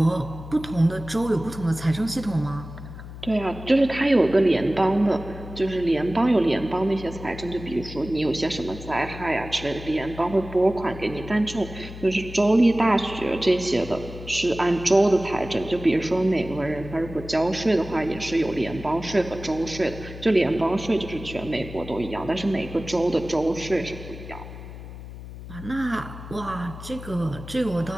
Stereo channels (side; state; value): left; noise; hum, 13 dB below the sound